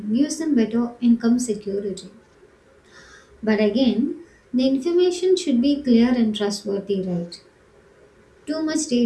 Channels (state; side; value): identical; both; correlation 1.00